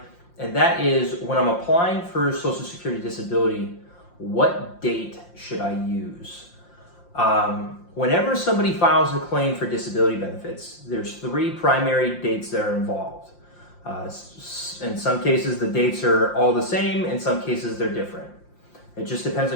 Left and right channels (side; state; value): right; late; 5.7 ms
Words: and that is when I'm applying for Social Security disability, what date should I use? Whenever somebody files a claim for disability benefits, there's three primary dates that are involved. In some cases, the dates are all the same. In some cases, they're different. It just depends